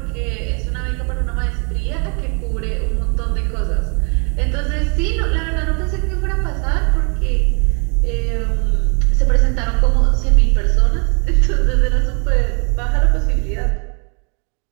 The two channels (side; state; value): left; quieter; 36.6 dB